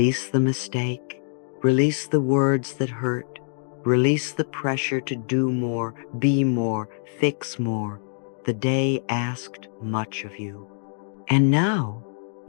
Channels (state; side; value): silent; right; digital silence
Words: the mistake. Release the words that hurt. Release the pressure to do more, be more, fix more. The day asked much of you. And now